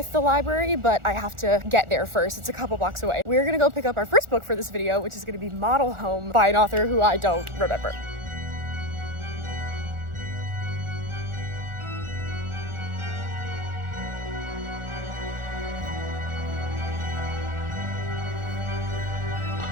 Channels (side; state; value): left; late; 1.4 ms